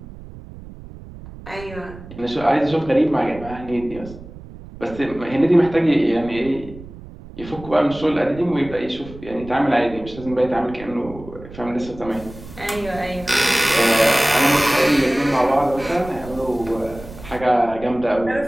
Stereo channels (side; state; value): right; noise; rumble, 16 dB below the sound